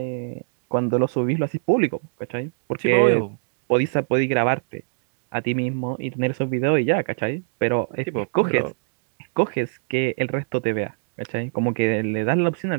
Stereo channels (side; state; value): left; silent; digital silence